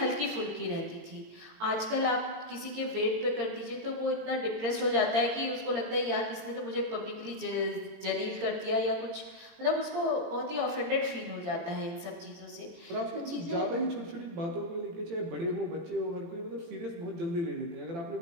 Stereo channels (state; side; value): late; left; 17 ms